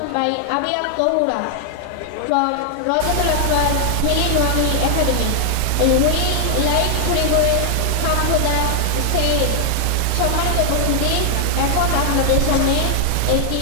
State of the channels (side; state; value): both; different; correlation 0.00